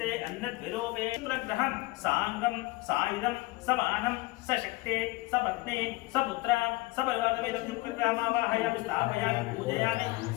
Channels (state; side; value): quieter; right; 21.2 dB